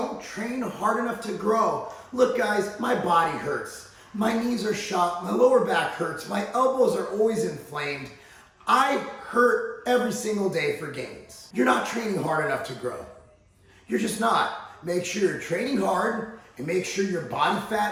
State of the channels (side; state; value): both; identical; correlation 1.00